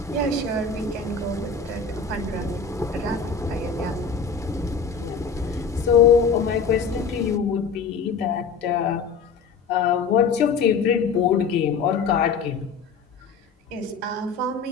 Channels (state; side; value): quieter; right; 5.5 dB